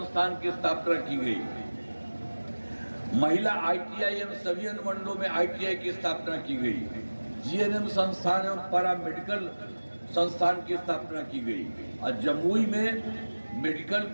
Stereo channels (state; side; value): inverted; both; correlation -1.00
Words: की स्थापना की गई, महिला ITI एवं सभी अनुमंडलों में ITI की स्थापना की गई, GNM संस्थान एवं पैरामेडिकल संस्थान की स्थापना की गई और जमुई में मेडिकल